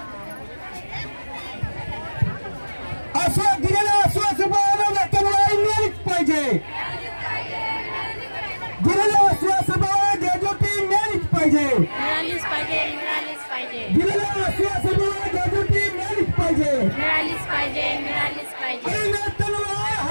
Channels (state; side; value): inverted; both; correlation -1.00